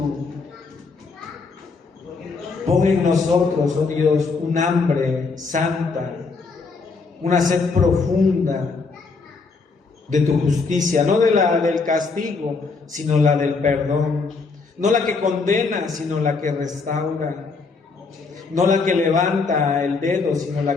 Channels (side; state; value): right; quieter; 4.4 dB